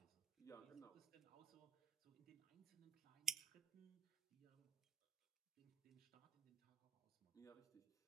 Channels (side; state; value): left; quieter; 7.3 dB